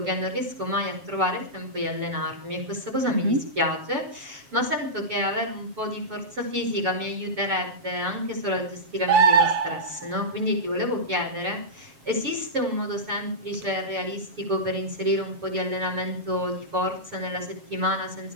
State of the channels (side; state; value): left; late; 7.3 ms